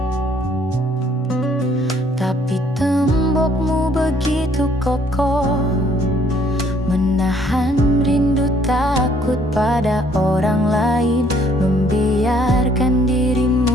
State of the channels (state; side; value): normal; both; correlation 0.63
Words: Tapi tembokmu begitu kokoh, menahan rindu takut pada orang lain, membiarkan